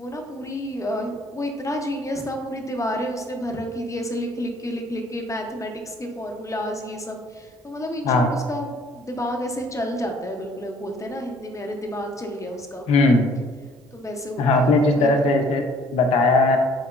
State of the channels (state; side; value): normal; both; correlation 0.58